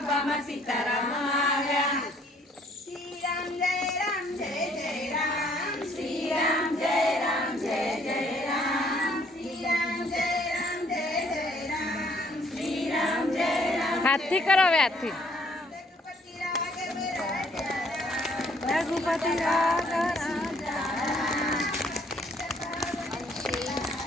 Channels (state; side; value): normal; both; correlation 0.63